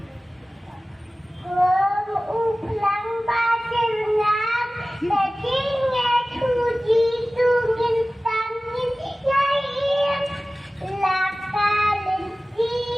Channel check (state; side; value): normal; both; correlation 0.97